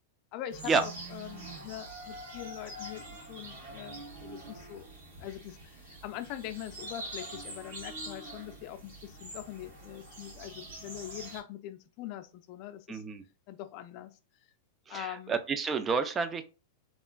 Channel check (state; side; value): normal; both; correlation 0.38